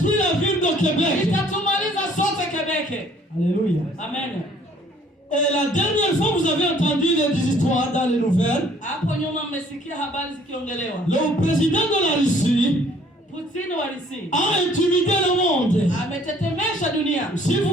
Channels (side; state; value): both; normal; correlation 0.58